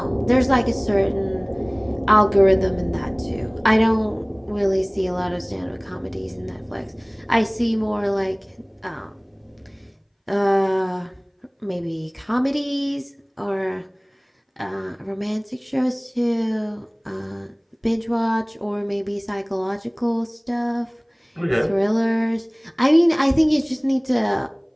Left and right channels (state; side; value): identical; both; correlation 1.00